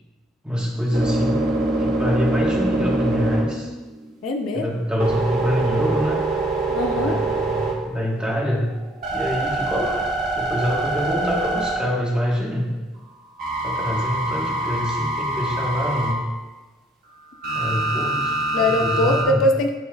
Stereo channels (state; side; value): normal; both; correlation 0.63